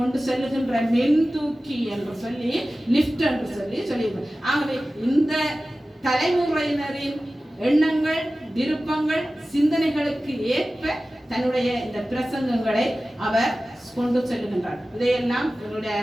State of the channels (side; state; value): both; normal; correlation 0.96